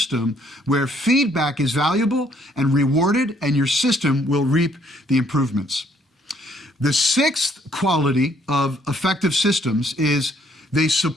where feedback is valuable and rewarded, and your system will reap the improvements. The sixth quality of effective systems is they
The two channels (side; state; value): both; normal; correlation 0.66